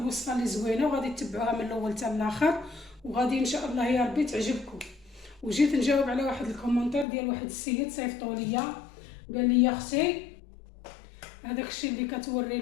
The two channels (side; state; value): right; drops out; at 7.1 s